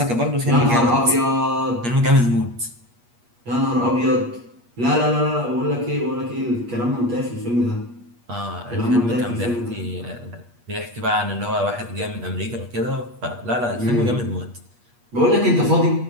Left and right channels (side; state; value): left; late; 8.4 ms